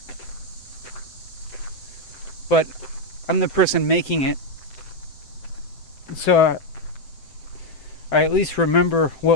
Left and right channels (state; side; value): late; right; 7.9 ms